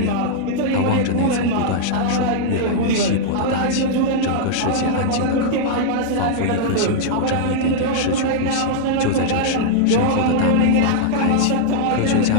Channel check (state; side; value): different; both; correlation -0.01